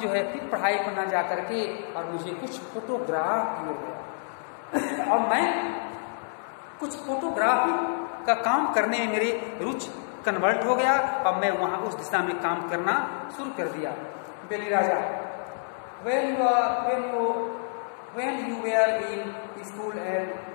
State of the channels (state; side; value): silent; right; digital silence